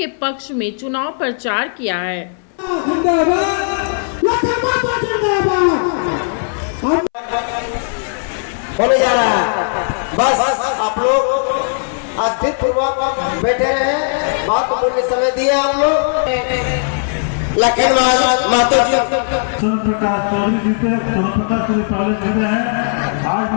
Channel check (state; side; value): silent; right; 67 dB below the other